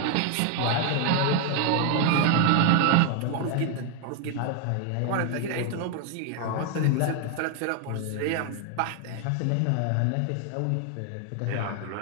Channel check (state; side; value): different; both; correlation 0.01